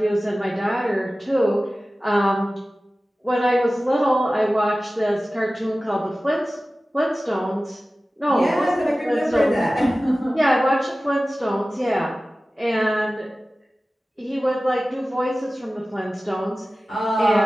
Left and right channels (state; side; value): normal; both; correlation 0.96